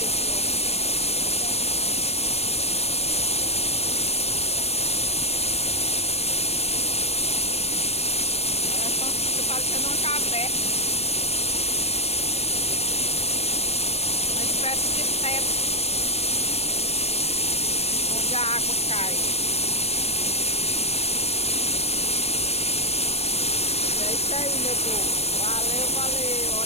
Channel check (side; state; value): right; late; 0.30 ms